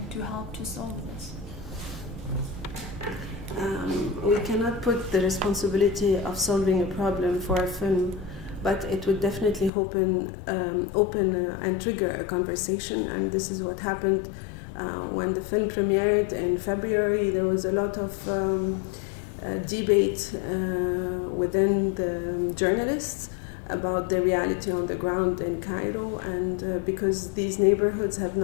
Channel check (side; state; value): right; drops out; at 9.7 s